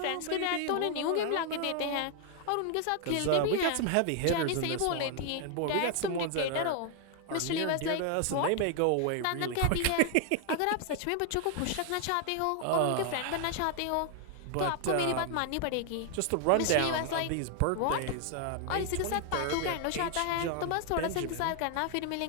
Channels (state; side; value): different; both; correlation 0.00